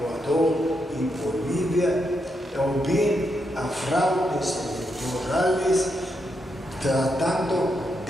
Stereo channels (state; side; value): normal; both; correlation 0.82